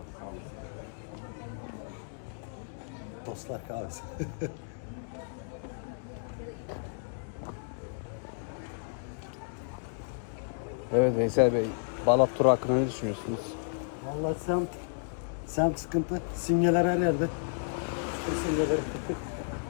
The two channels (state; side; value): silent; right; digital silence